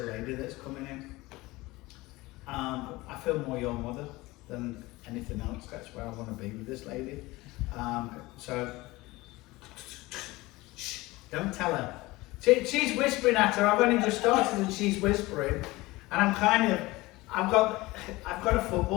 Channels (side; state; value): right; quieter; 20.6 dB